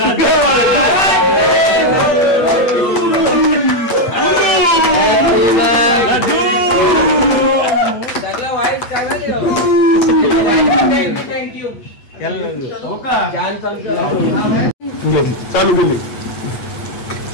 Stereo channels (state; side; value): late; right; 8.4 ms